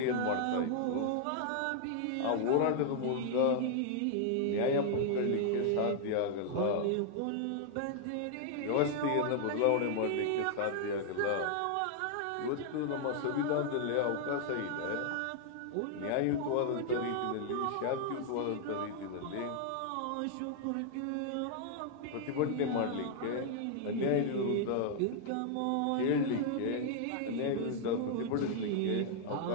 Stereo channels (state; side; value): different; both; correlation 0.00